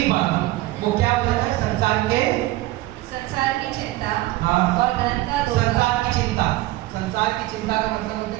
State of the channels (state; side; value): quieter; left; 17.8 dB